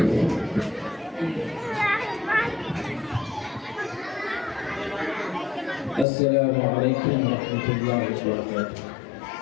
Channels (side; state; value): right; drops out; at 6.1 s